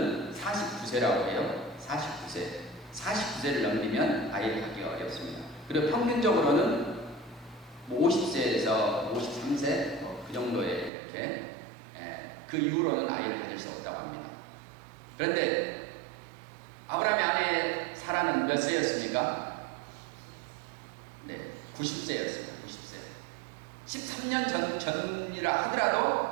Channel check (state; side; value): drops out; left; at 10.9 s